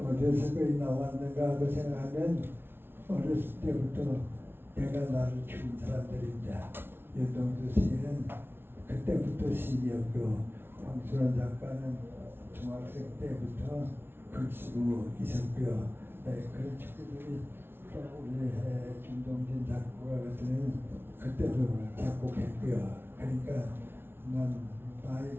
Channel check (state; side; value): late; left; 0.11 ms